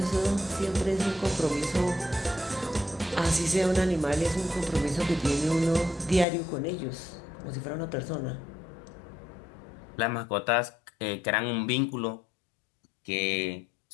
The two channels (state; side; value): drops out; right; at 6.2 s